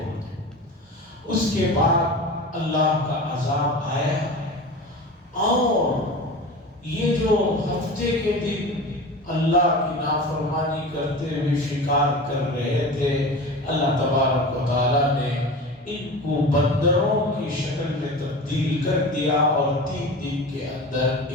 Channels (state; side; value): normal; both; correlation 0.32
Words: اس کے بعد اللہ کا عذاب آیا، اور یہ جو ہفتے کے دن اللہ کی نافرمانی کرتے ہوئے شکار کر رہے تھے، اللہ تبارک و تعالیٰ نے ان کو بندروں کی شکل میں تبدیل کر دیا، اور 3 دن کے اندر